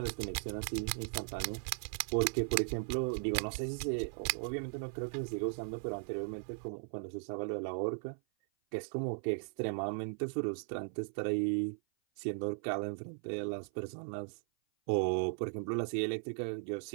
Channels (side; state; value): left; silent; 53 dB below the other